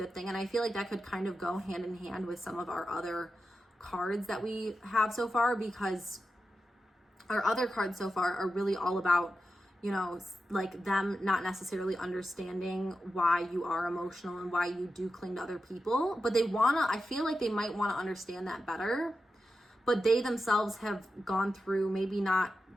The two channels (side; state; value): both; normal; correlation 0.90